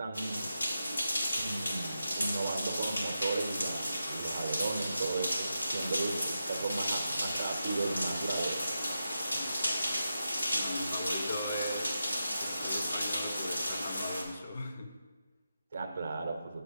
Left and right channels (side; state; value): both; inverted; correlation -0.88